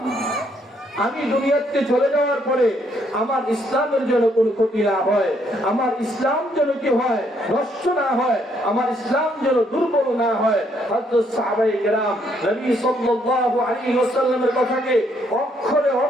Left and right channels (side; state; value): both; normal; correlation 0.70